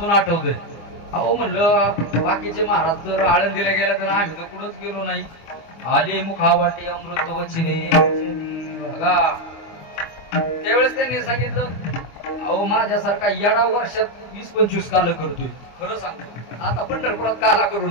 आठवतंय, अहो म्हणलं बाकीचे महाराज जर आळंदीला गेला तर आम्ही तर कुठंच गेलो नाही. आले मुखावाटे अमृत वचने बघा. त्यावेळेस त्यांनी सांगितलं, अहो माझ्यासारखा येडा वर्षात 20-25 काल करतोय. खरं सांगतो, आता पंढरपुरात काला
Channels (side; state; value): right; late; 25 ms